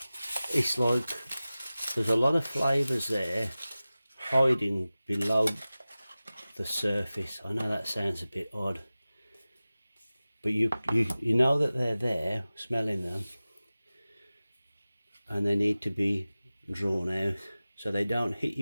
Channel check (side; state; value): both; inverted; correlation -0.97